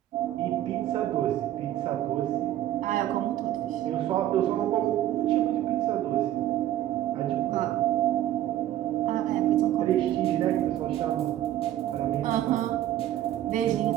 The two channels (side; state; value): left; quieter; 13.1 dB